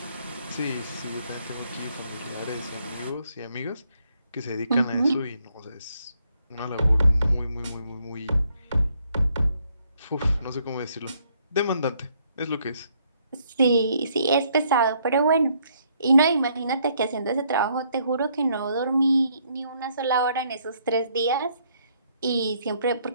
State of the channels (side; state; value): both; inverted; correlation -0.70